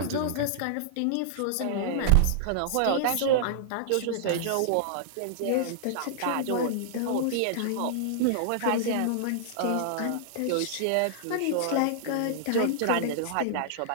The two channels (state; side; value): different; both; correlation -0.01